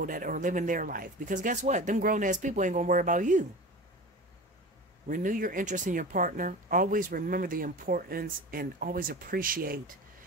that are living their life. Because guess what? Them grown-ass people ain't going to worry about you. Renew your interest in your partner. Always remember the importance and always appreciate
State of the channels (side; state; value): both; normal; correlation 0.33